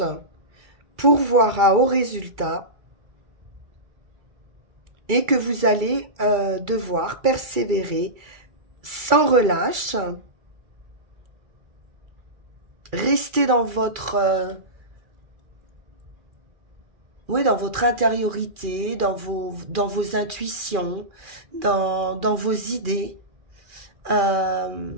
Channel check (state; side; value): late; left; 2.3 ms